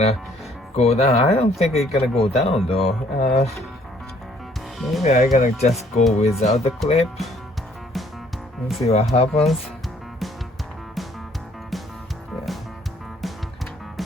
go down. I don't think it's gonna go down though. Maybe I'm gonna just go without the clip. Let's see what happens. Yeah.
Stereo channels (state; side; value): normal; both; correlation 0.62